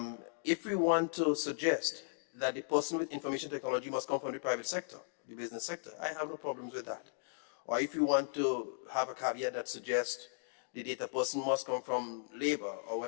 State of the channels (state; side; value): silent; right; digital silence